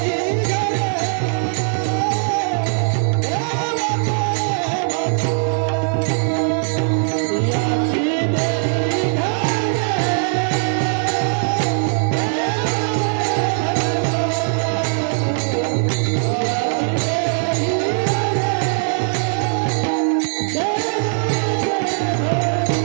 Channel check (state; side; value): silent; left; 56 dB below the other